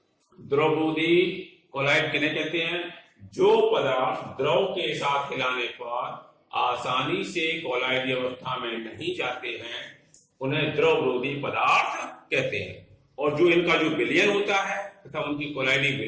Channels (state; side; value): identical; both; correlation 1.00